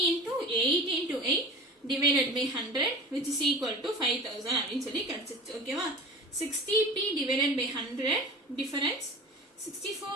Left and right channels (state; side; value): normal; both; correlation 0.36